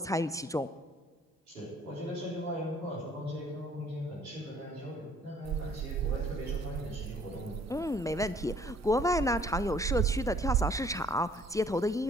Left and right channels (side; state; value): both; normal; correlation 0.59